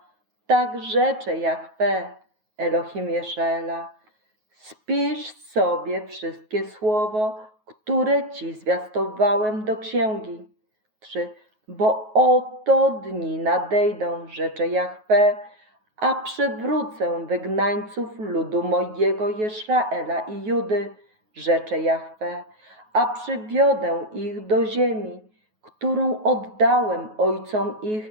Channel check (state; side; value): late; left; 9.4 ms